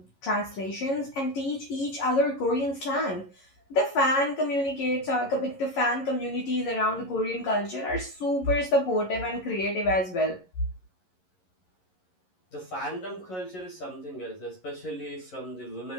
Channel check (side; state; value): right; late; 11 ms